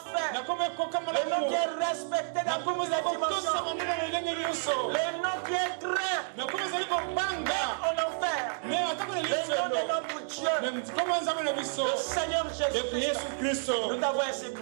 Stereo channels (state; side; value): silent; left; digital silence